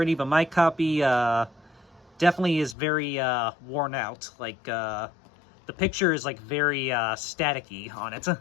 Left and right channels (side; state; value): right; drops out; at 2.8 s